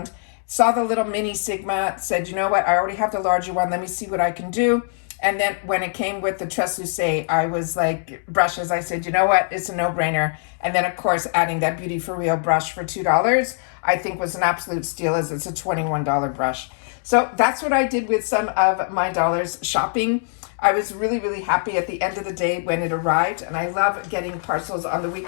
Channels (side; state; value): right; silent; digital silence